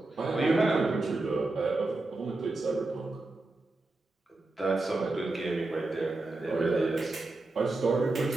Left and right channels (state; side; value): quieter; left; 3.1 dB